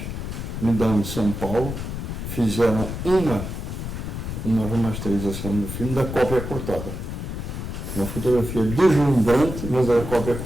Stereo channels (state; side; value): noise; left; rumble, 6 dB below the sound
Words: no Dão de São Paulo, fizeram uma remasterização do filme da cópia cortada. Uma fotografia deslumbrante, mas a cópia